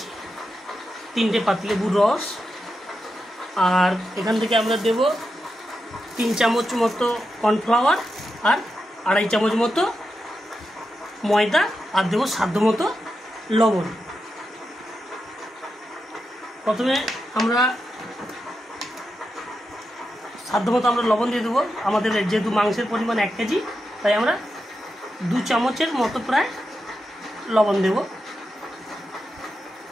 3টে পাতিলেবুর রস, আর এখান থেকে আমরা দেব 3 চামচ মতো কর্নফ্লাওয়ার আর 2.5 চামচ মতো ময়দা, আর দেবো সাধ্য মতো লবণ। প্রথমে আমরা সাধ্যমতো আমরা লবণ দিয়ে দেবো। আমাদের যেহেতু মাংসের পরিমাণ 1 কেজি, তাই আমরা 2 চামচের মতো প্রায় লবণ দেব।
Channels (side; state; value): both; normal; correlation 0.88